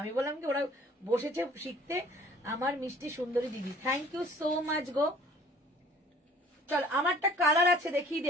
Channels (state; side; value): normal; both; correlation 0.53